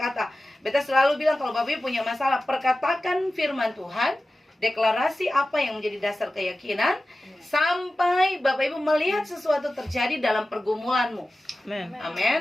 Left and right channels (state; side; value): normal; both; correlation 0.95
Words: Beta selalu bilang kalau Bapak Ibu punya masalah, perkatakan firman Tuhan, deklarasi apa yang menjadi dasar keyakinan, sampai Bapak Ibu melihat sesuatu terjadi dalam pergumulanmu. Amin.